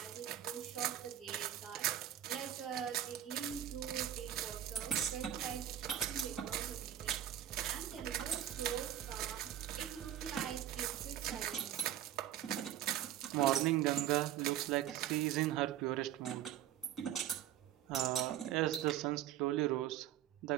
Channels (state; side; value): quieter; left; 11.5 dB